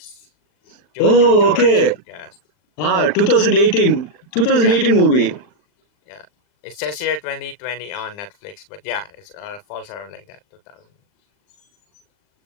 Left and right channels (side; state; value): right; late; 39 ms